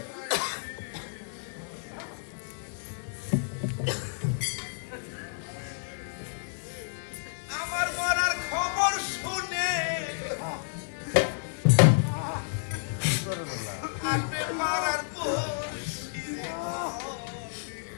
রাখি আমার মরার খবর শুনে আপনি মারার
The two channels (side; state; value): right; silent; digital silence